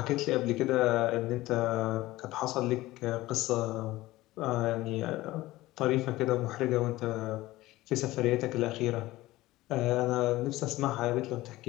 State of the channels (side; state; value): right; quieter; 17.8 dB